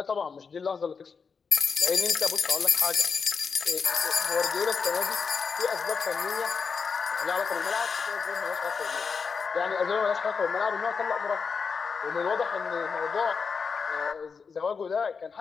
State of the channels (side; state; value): right; quieter; 5.5 dB